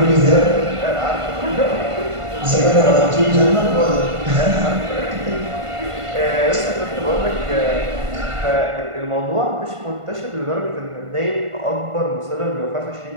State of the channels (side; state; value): left; late; 1.5 ms